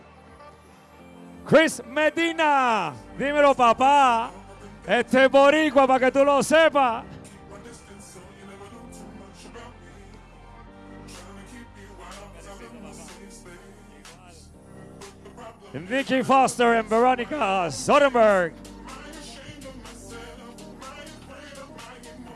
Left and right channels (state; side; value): identical; both; correlation 1.00